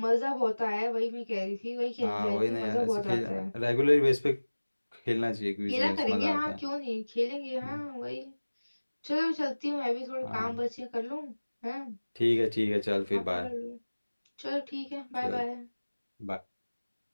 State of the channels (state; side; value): inverted; both; correlation -1.00